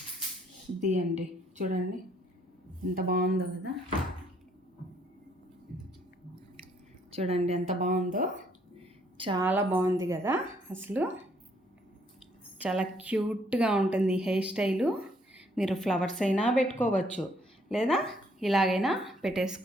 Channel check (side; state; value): both; normal; correlation 0.67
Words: ఇది అండి చూడండి ఎంత బాగుందో కదా, చూడండి ఎంత బాగుందో, చాలా బాగుంది కదా. అసలు చాలా క్యూట్గా ఉంటుంది ఈ హెయిర్ స్టైలు. మీరు ఫ్లవర్స్ అయినా పెట్టుకోవచ్చు, లేదా ఇలాగైనా